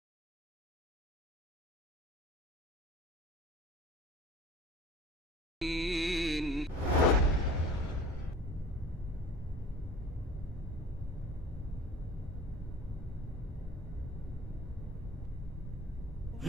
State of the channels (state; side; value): normal; both; correlation 0.44